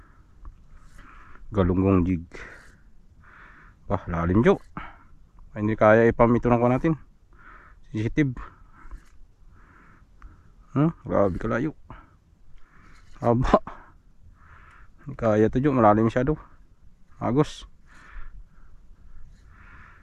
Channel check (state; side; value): identical; both; correlation 1.00